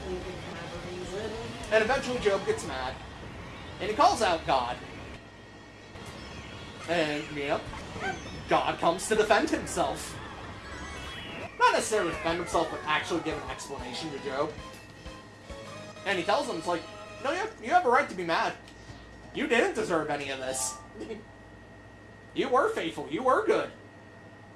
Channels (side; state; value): both; identical; correlation 1.00